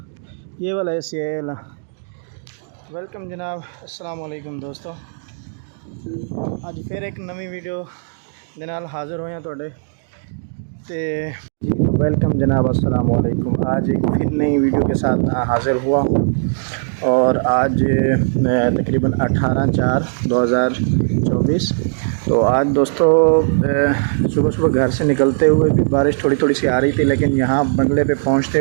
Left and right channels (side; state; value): left; silent; digital silence